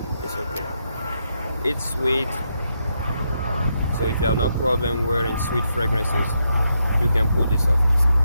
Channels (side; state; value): both; inverted; correlation -0.81